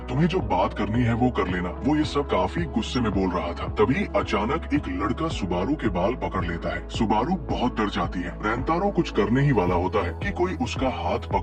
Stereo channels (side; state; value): both; identical; correlation 1.00